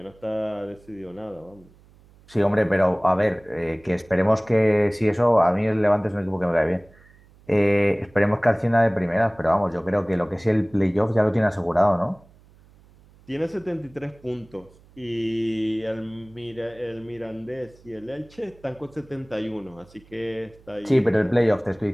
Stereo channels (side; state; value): right; noise; hum, 27 dB below the sound